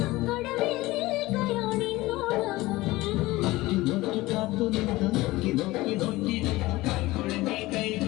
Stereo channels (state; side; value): quieter; right; 19.2 dB